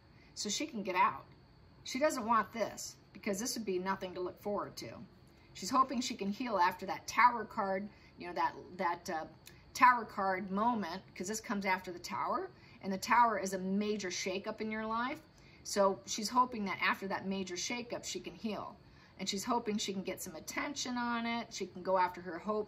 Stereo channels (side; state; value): both; identical; correlation 1.00